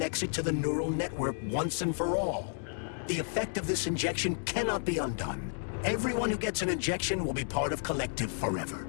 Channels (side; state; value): right; silent; digital silence